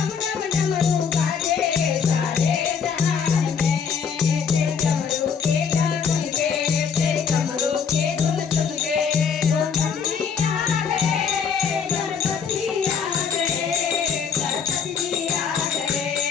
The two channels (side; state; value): right; quieter; 6.5 dB